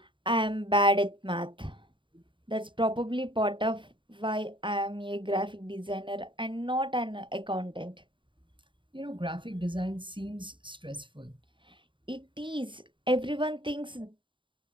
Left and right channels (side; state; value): left; late; 0.24 ms